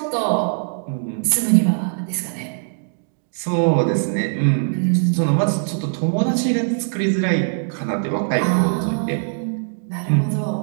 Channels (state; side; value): silent; left; digital silence